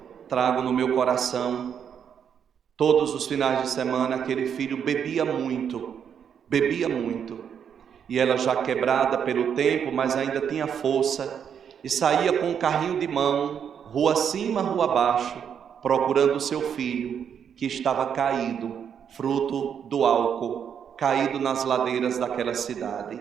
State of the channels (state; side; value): quieter; left; 8.0 dB